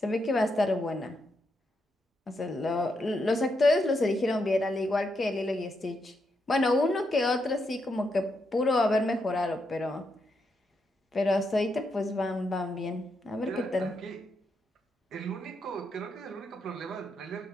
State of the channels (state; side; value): normal; both; correlation 0.81